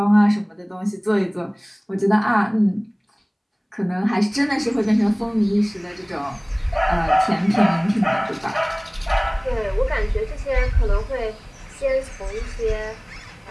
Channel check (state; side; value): identical; both; correlation 1.00